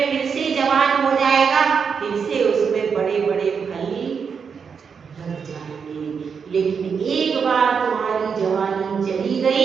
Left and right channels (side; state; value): left; quieter; 6.2 dB